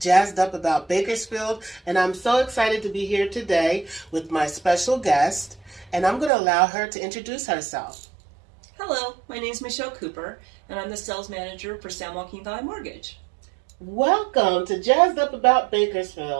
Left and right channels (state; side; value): drops out; left; at 6.3 s